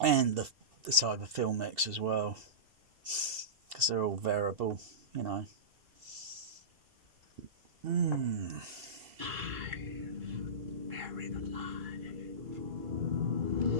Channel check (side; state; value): left; late; 2.7 ms